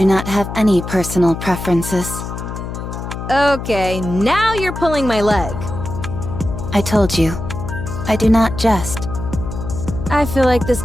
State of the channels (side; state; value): left; noise; hum, 7 dB below the sound